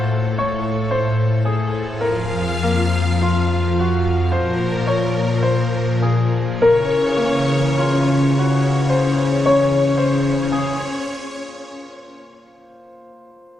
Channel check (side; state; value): both; normal; correlation 0.86